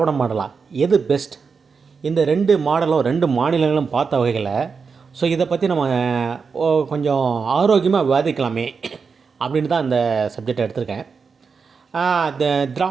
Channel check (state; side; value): quieter; left; 5.4 dB